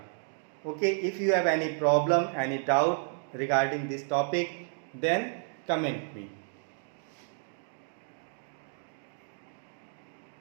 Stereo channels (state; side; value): silent; left; 57 dB below the other